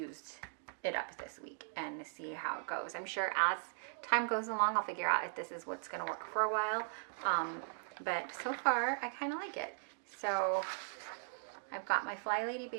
it up this week and see how it goes. I'm sure as time goes along, I'll figure out if this is what's going to work for a while. But so far, I kind of like it. So I've got my Fly Lady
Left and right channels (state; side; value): silent; left; digital silence